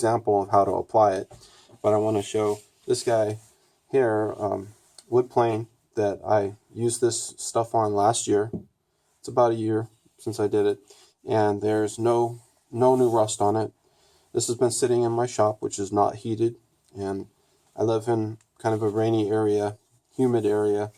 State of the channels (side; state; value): both; identical; correlation 1.00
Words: of how to apply it. But I want to show this guy here, wood plane, that I used this stuff on last year. It's about a year since I did it, and there's no new rust on it. This has been sitting in my shop, which is not heated, and I live in kind of a rainy area, humid area,